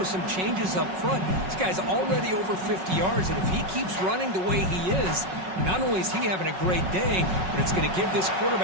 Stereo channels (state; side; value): late; left; 5.4 ms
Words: some changes up front. This guy's already over 50 yards, and if he keeps running the way he is, not only is he having a great day, but it's going to give this